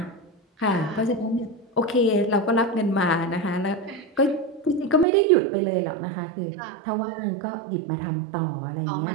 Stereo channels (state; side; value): drops out; left; at 5.1 s